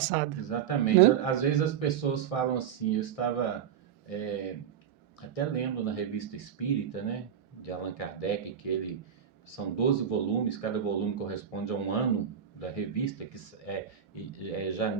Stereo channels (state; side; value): quieter; left; 8.7 dB